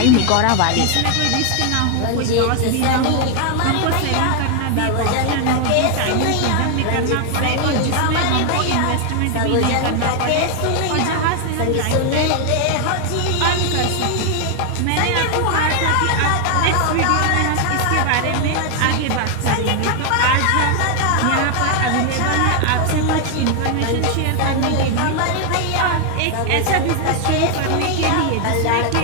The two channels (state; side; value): different; both; correlation 0.01